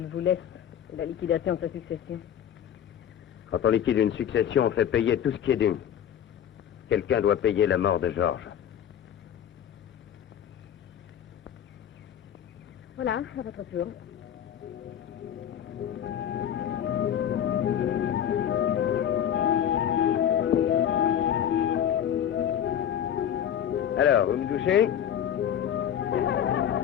vous laisse et la liquidation de sa succession. Quand on liquide une succession, on fait payer tout ce qui est dû. Quelqu'un doit payer la mort de Georges. Voilà, à votre tour. Alors, vous me touchez?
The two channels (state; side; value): quieter; right; 9.7 dB